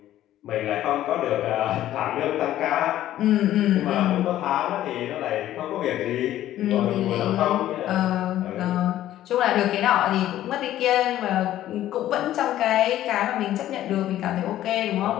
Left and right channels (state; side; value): quieter; right; 13.1 dB